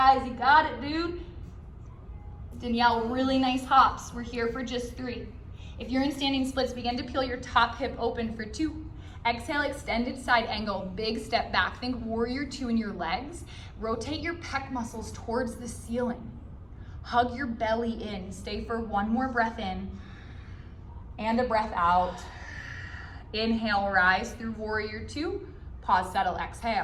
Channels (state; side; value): identical; both; correlation 1.00